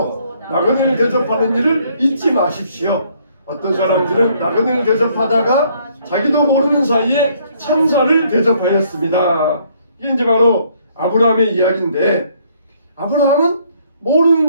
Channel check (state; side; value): inverted; both; correlation -0.65